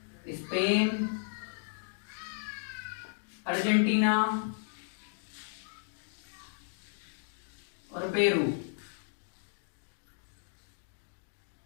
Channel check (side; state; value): right; silent; digital silence